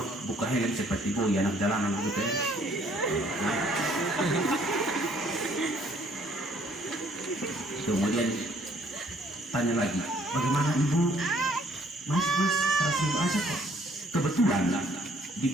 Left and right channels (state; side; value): normal; both; correlation 0.62